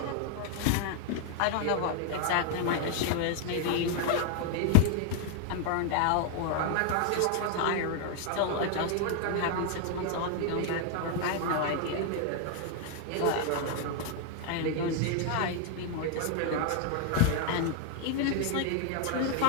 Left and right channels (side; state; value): both; different; correlation 0.00